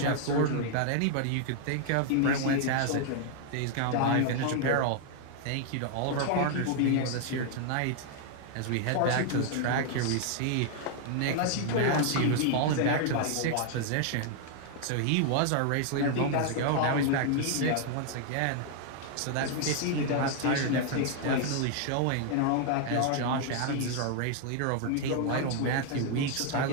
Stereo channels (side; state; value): both; different; correlation 0.00